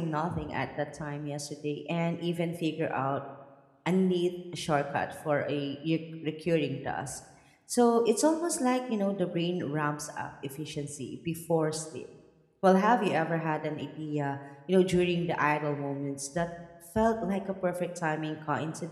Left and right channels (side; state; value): both; identical; correlation 1.00